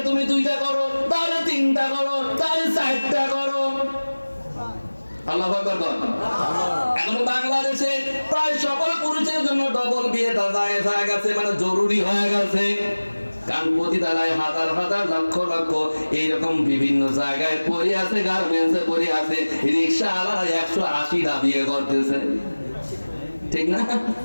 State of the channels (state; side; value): inverted; both; correlation -1.00